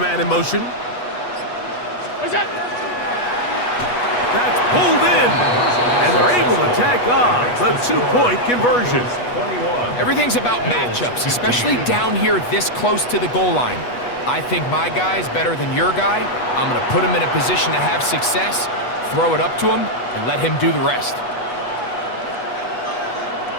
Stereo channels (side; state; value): right; late; 8.2 ms